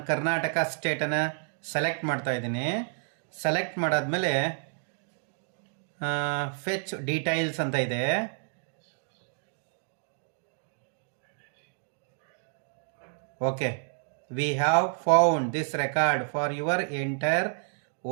ಕರ್ನಾಟಕ ಸ್ಟೇಟನ್ನು ಸೆಲೆಕ್ಟ್ ಮಾಡ್ತಾ ಇದ್ದೀನಿ. ಸೆಲೆಕ್ಟ್ ಮಾಡಾದ್ಮೇಲೆ ಫೆಚ್ ಡೀಟೈಲ್ಸ್ ಅಂತ ಇದೆ. Okay, V have found this record for your enter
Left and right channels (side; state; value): left; silent; 58 dB below the other